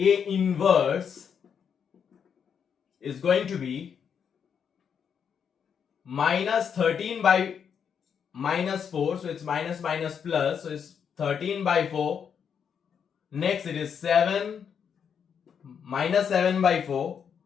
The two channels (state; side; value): quieter; right; 7.3 dB